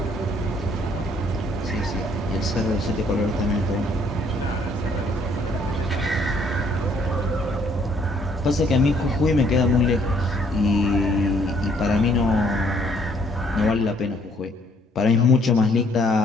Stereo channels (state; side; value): normal; both; correlation 0.65